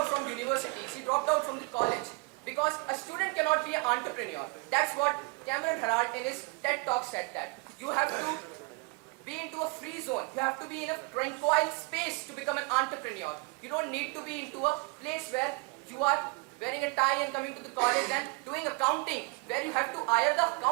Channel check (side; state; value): left; quieter; 28.3 dB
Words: from universities. He dropped out from the college. Because a student cannot be an entrepreneur. That's what Cameron Herald in his TED Talk said that. You have to be into a free zone. You have to be in a tranquil space to become an entrepreneur. You don't need to be into a place where you are wearing a tie and coming to the college and doing accounting, where you have to hire the